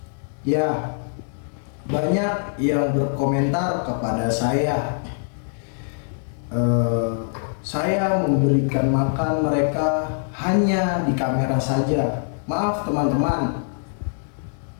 Ya, banyak yang berkomentar kepada saya. Saya memberikan makan mereka hanya di kamera saja. Maaf teman-teman,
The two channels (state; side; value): silent; right; digital silence